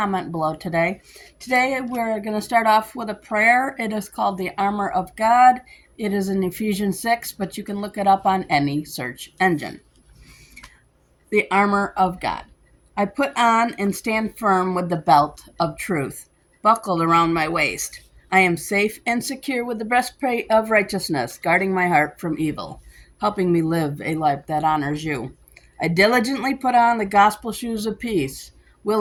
below today. Today we're going to start off with a prayer. It is called the Armor of God. It is in Ephesians 6, but you can look it up on any search engine. The Armor of God. I put on and stand firm with the belt of truth, buckled around my waist. I am safe and secure with the breastplate of righteousness, guarding my heart from evil, helping me live a life that honors you. I diligently put on the gospel shoes of peace,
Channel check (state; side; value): identical; both; correlation 1.00